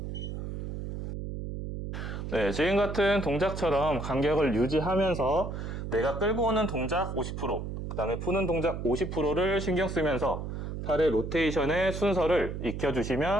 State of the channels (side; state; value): right; noise; hum, 6 dB below the sound